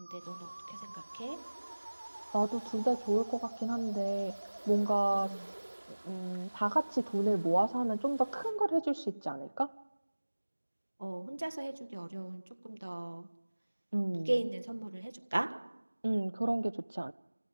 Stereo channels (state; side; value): inverted; both; correlation -1.00